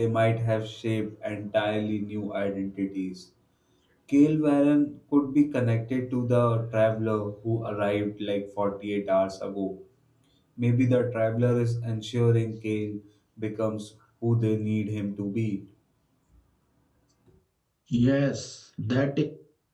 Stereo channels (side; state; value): both; identical; correlation 1.00